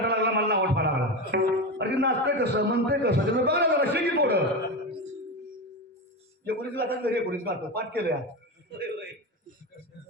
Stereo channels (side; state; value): both; normal; correlation 0.19